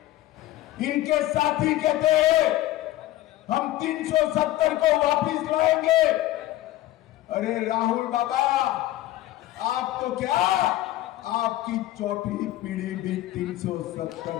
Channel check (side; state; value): right; quieter; 15.4 dB